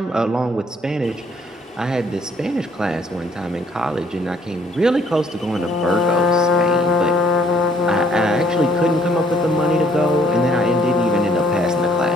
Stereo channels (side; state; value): both; normal; correlation 0.63